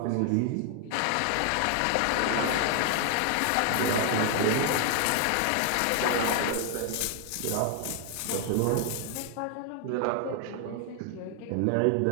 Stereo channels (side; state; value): both; different; correlation 0.00